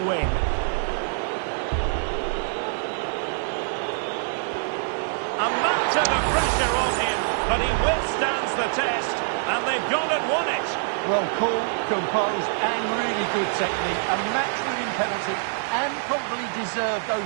win. A mountain of pressure on him, but he withstands the test, and they've gone and won it. Well, cool, composed, and really good technique. A match-winning penalty, and probably deserved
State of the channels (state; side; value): silent; left; digital silence